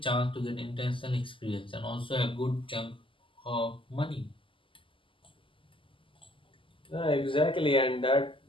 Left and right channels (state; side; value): late; right; 0.25 ms